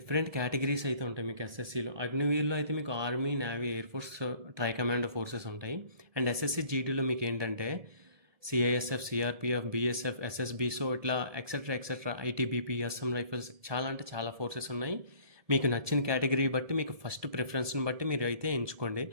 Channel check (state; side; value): late; left; 1.7 ms